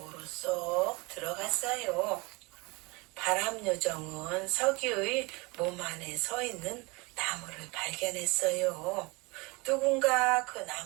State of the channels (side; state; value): left; quieter; 26.3 dB